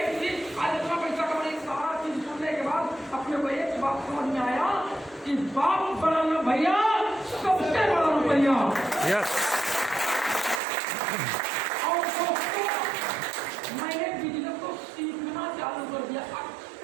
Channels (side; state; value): left; drops out; at 10.6 s